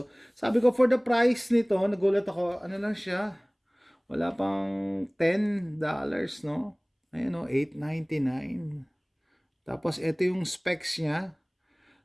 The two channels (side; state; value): both; identical; correlation 1.00